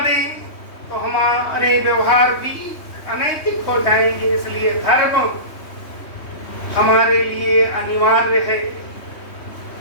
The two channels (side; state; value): right; late; 3.2 ms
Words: तो हमारे व्यवहार भी अनैतिक हो जाएंगे। इसलिए धर्म हमारे लिए अनिवार्य है।